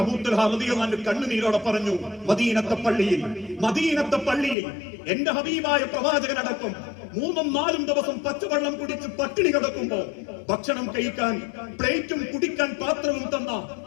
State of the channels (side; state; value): right; drops out; at 4.5 s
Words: അബൂ തുൽഹ റളിയല്ലാഹു അൻഹു കണ്ണുനീരോടെ പറഞ്ഞു, മദീനത്തെ പള്ളിയിൽ എന്റെ ഹബീബായ പ്രവാചകനടക്കം 3-4 ദിവസം പച്ചവെള്ളം കുടിച്ച് പട്ടിണി കിടക്കുമ്പോ ഭക്ഷണം കഴിക്കാൻ പ്ലേറ്റും കുടിക്കാൻ പാത്രവും തന്ന